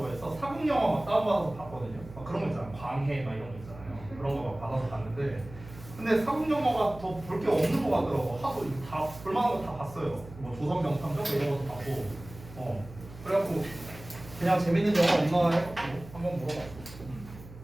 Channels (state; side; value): noise; right; hum, 16 dB below the sound